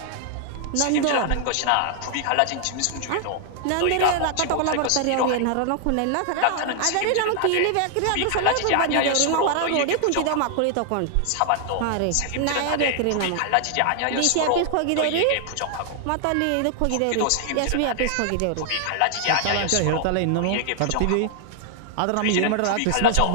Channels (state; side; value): different; both; correlation 0.00